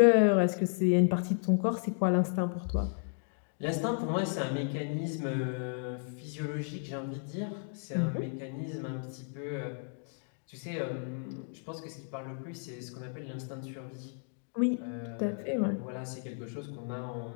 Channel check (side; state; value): right; silent; 56 dB below the other